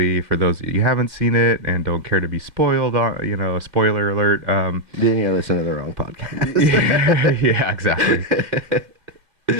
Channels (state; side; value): late; left; 2.0 ms